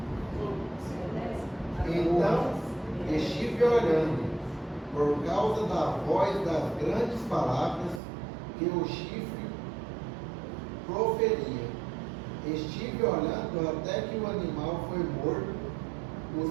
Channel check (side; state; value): left; drops out; at 8.0 s